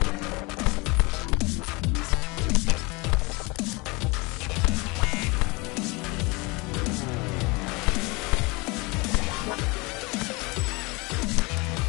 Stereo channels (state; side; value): quieter; right; 26.3 dB